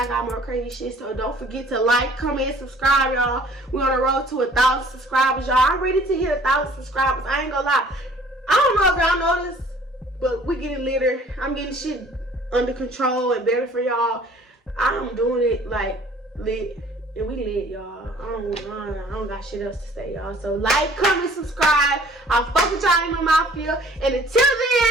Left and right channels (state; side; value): normal; both; correlation 0.54